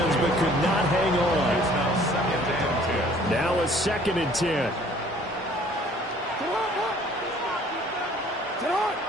but could not hang on. Now a 2nd and 10.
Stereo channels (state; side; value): normal; both; correlation 0.55